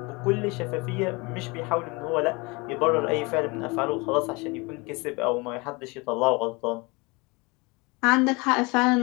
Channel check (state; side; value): quieter; right; 26.7 dB